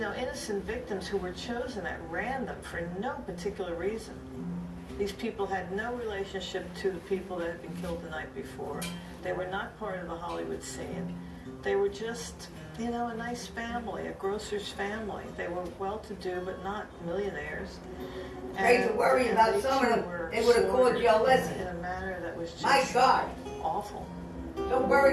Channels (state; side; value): identical; both; correlation 1.00